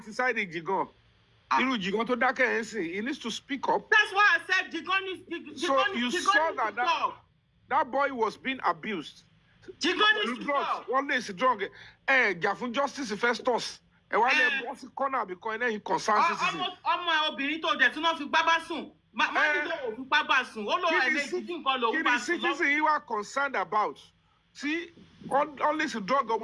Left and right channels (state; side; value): identical; both; correlation 1.00